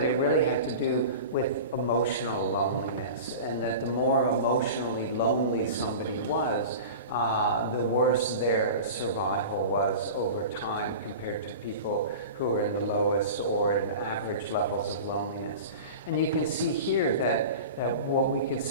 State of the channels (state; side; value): inverted; both; correlation -0.34